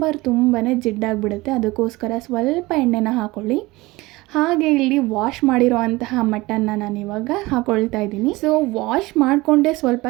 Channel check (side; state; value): left; quieter; 21.0 dB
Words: ತುಂಬಾ ಜಿಡ್ಡಾಗಿಬಿಡುತ್ತೆ. ಅದಕ್ಕೋಸ್ಕರ ಸ್ವಲ್ಪ ಎಣ್ಣೆನ ಹಾಕ್ಕೊಳ್ಳಿ. ಹಾಗೆ ಇಲ್ಲಿ ವಾಶ್ ಮಾಡಿರೋ ಅಂತಹ ಮಟನ್ನ ನಾನಿವಾಗ ಹಾಕ್ಕೊಳ್ತಾ ಇದ್ದೀನಿ. ವಾಶ್ ಮಾಡಿಕೊಂಡೇ ಸ್ವಲ್ಪ